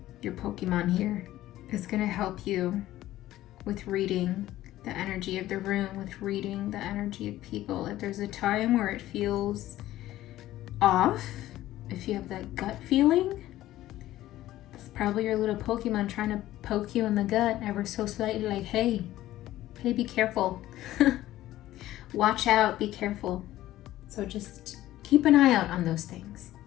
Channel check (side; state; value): right; quieter; 14.7 dB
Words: your Pokemon here is going to help you with reading the energy of the room, with reading the energy of people. If there's a time where it feels off, if you have that gut feeling, it's probably your little Pokemon trying to poke you in the gut ever so slightly, like, hey, be careful. Watch out, be careful. So just keep an eye out on those things.